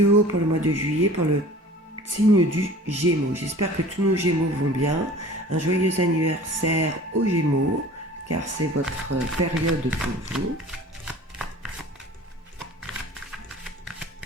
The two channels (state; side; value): normal; both; correlation 0.44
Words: pour le mois de juillet pour le signe du Gémeaux. J'espère que tous nos Gémeaux vont bien. Un joyeux anniversaire aux Gémeaux, car c'est votre période pour vous.